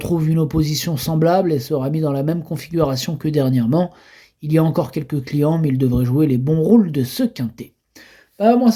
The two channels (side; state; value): both; identical; correlation 1.00